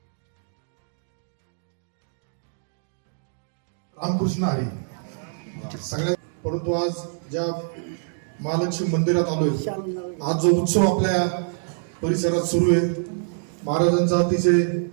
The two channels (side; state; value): left; silent; digital silence